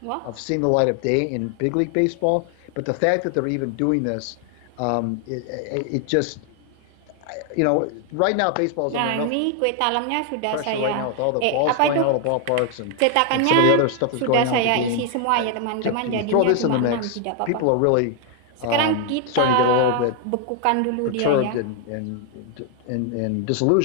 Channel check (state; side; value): different; both; correlation 0.00